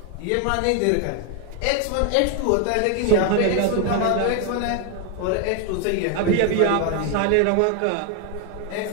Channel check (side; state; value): both; different; correlation 0.01